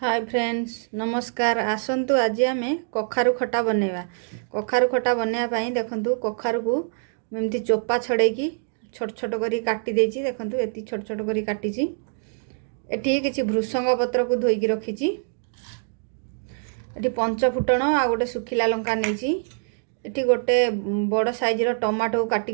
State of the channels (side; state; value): left; silent; 62 dB below the other